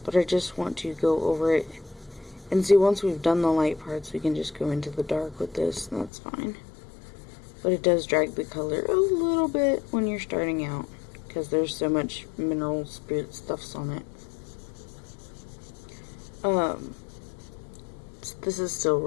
But I just want to go over it. And see, once we've done the light parts, we can just go into the dark with this, and that's fine. But it does drag the color a little bit when you're starting out, because there's so much mineral spirit stuffs on it. This is still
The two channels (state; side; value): drops out; right; at 6.1 s